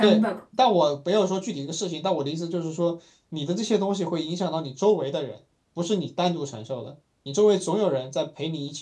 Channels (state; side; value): identical; both; correlation 1.00